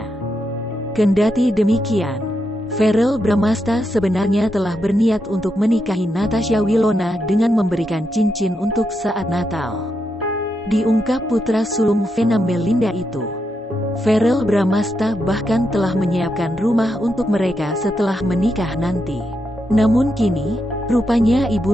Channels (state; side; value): normal; both; correlation 0.84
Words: Kendati demikian, Verrell Bramasta sebenarnya telah berniat untuk menikahi Natasha Wilona dengan memberikan cincin untuk saat Natal. Diungkap putra sulung Vena Melinda itu, Verrell Bramasta bahkan telah menyiapkan rumah untuk mereka setelah menikah nanti. Namun kini, rupanya